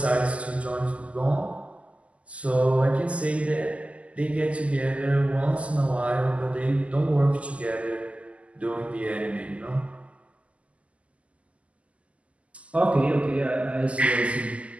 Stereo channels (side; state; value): left; late; 0.064 ms